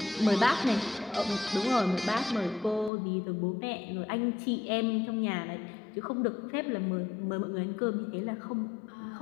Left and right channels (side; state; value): right; drops out; at 2.9 s